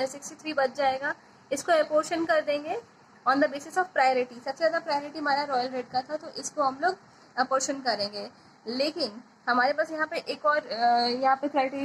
बच जाएगा। इसको अपोर्शन कर देंगे on the basis of priority. सबसे ज़्यादा प्रायोरिटी हमारा रॉयल रेड का था, तो इसको हम लोग अपोर्शन करेंगे। लेकिन हमारे पास यहाँ पे एक और यहाँ पे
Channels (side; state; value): both; identical; correlation 1.00